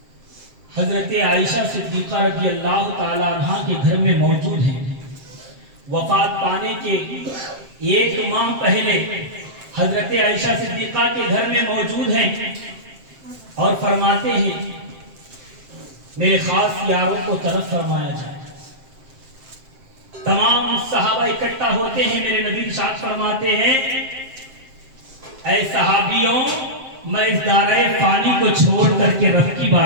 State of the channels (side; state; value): left; late; 7.6 ms